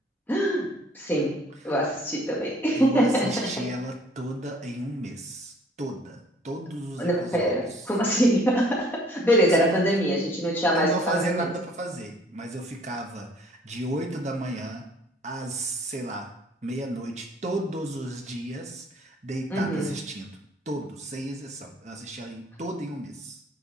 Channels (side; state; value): both; normal; correlation 0.57